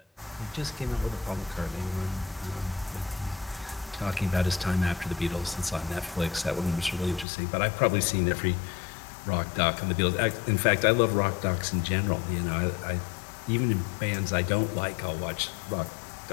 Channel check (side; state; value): right; drops out; at 7.2 s